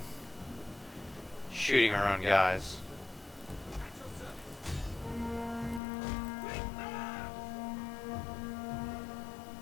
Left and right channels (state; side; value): drops out; right; at 5.8 s